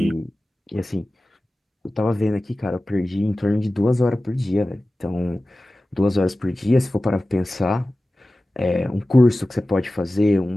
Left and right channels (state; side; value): normal; both; correlation 0.96